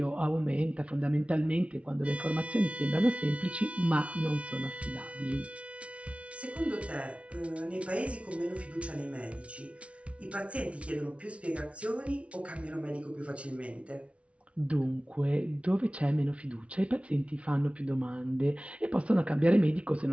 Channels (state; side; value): late; left; 0.062 ms